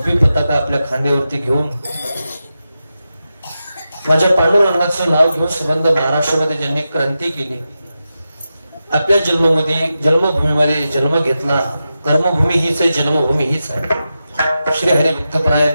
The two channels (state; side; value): inverted; both; correlation -0.91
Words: पताका आपल्या खांद्यावरती घेऊन माझ्या पांडुरंगाचं नाव घेऊन संबंध महाराष्ट्रामध्ये ज्यांनी क्रांती केली, आपल्या जन्मभूमीमध्ये जन्म घेतला. कर्मभूमी हीच आहे, जन्मभूमी हीच आहे. श्री हरिभक्तपरायण,